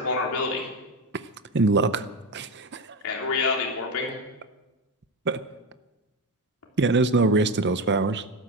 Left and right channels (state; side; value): normal; both; correlation 0.17